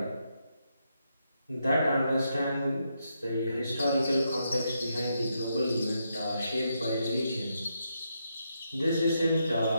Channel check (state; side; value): inverted; both; correlation -0.81